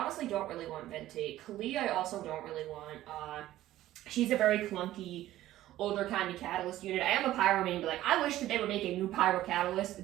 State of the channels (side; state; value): left; quieter; 14.5 dB